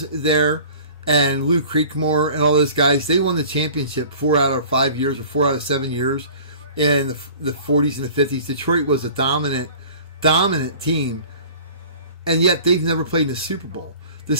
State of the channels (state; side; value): inverted; both; correlation -0.45